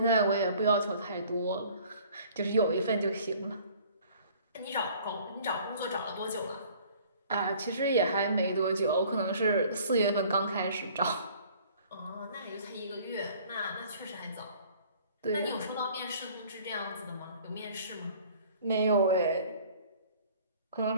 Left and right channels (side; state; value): both; inverted; correlation -0.52